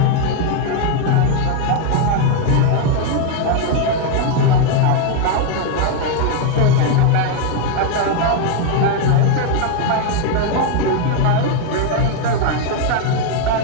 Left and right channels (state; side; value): different; both; correlation 0.01